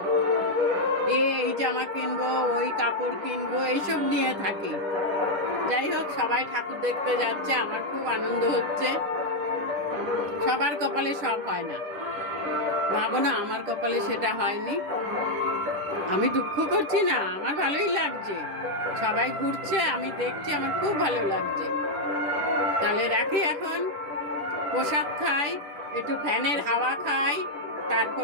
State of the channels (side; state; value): left; late; 10 ms